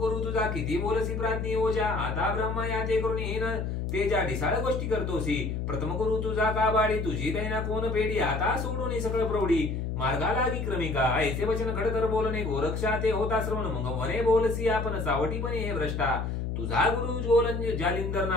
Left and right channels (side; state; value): left; noise; hum, 2 dB below the sound